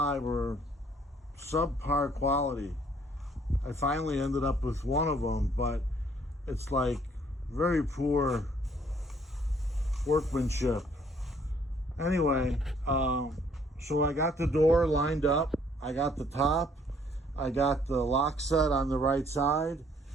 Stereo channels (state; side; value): normal; both; correlation 0.63